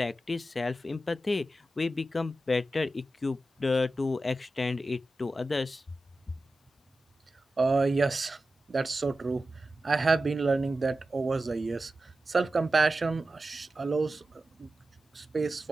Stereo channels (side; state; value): both; normal; correlation 0.93